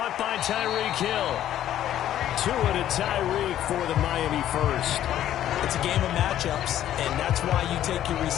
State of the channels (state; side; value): quieter; right; 11.8 dB